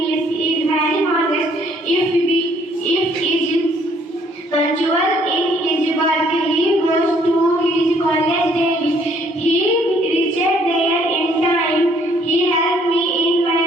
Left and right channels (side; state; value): both; normal; correlation 0.64